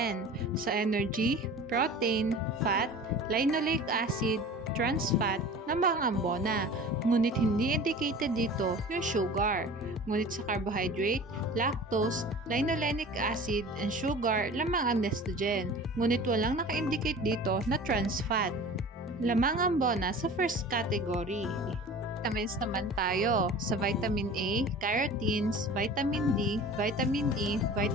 Sa energy, protein, fat, linoleic acid, trans fat na mga ambona. Ngunit hindi indicated dito yung sugar. Ngunit sa carbohydrate, lactose, linolenic acid, and sugar lamang ang Nestogen. Ngunit walang naka-indicate dito na trans fat. Lamang ambona sa first category. Vitamins naman tayo. Sa vitamin A, carotenes, vitamin D, vitamin E,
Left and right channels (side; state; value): both; normal; correlation 0.40